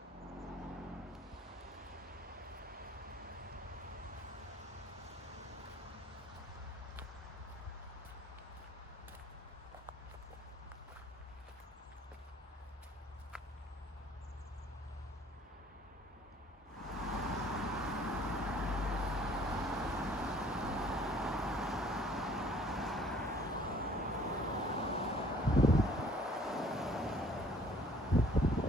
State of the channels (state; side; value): normal; both; correlation 0.56